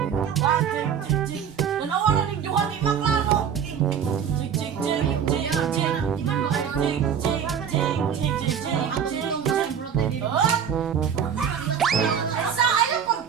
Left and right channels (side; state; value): left; quieter; 7.9 dB